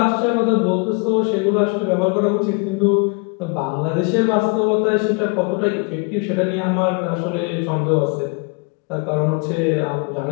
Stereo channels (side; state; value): right; quieter; 33.2 dB